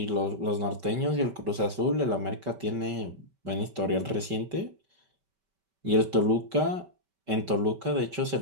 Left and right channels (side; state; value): left; late; 5.2 ms